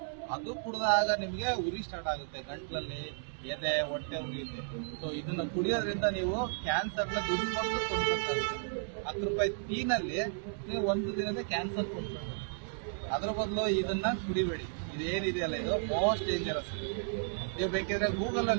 ಅದು ಕುಡಿದಾಗ ನಿಮಗೆ ಉರಿ ಸ್ಟಾರ್ಟ್ ಆಗುತ್ತೆ, ಗಂಟ್ಲಲ್ಲಿ ಎದೆ, ಹೊಟ್ಟೆ ಉರಿಯುತ್ತೆ. ಸೊ ಇದನ್ನ ಕುಡಿಯೋದ್ರಿಂದ ನೀವು ಕ್ಯಾನ್ಸರ್ನ ದುಡ್ಡು ಕೊಟ್ಟು ಕೊಡ್ಬೇಕಾಗುತ್ತೆ. 10 ರೂಪಾಯಿ ಟೀನಲ್ಲಿ ನೀವು ಒಂದು ದಿನದ ಕ್ಯಾನ್ಸರ್ ಕೊಡ್ಬೇಕು. ಅದ್ರ ಬದಲು ಇದನ್ನ ಕುಡಿಬೇಡಿ. ಏನಿದೆಯಲ್ಲ ಇದು ಮೋಸ್ಟ್ ಡೇಂಜರಸ್. ನೀವು ಬೇಕಿದ್ರೆ ಗೂಗಲ್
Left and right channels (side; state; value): left; silent; digital silence